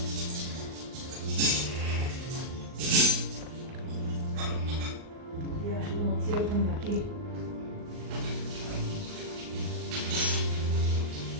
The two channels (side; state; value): left; late; 39 ms